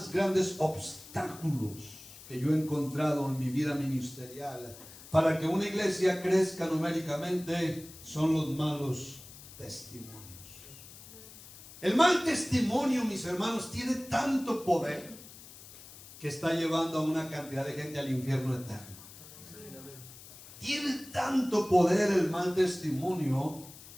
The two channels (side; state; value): left; noise; hiss, 18 dB below the sound